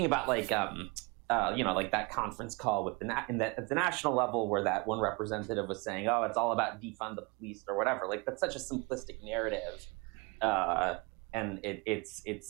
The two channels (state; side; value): quieter; left; 28.8 dB